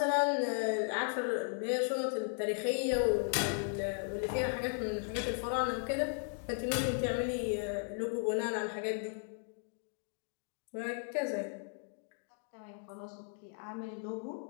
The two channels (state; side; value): silent; right; 54 dB below the other